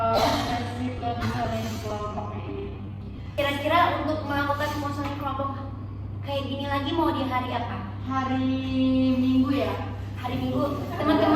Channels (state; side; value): identical; both; correlation 1.00